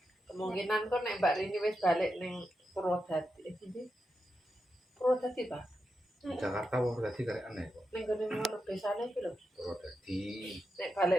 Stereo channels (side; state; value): both; normal; correlation 0.87